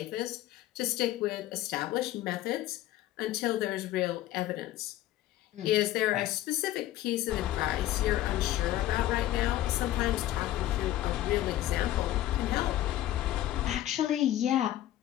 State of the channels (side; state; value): right; quieter; 14.2 dB